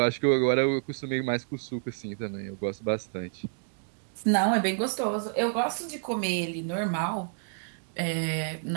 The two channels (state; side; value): silent; left; digital silence